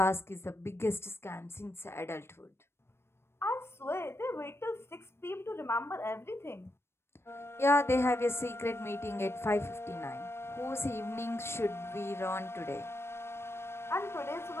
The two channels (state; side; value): late; right; 0.12 ms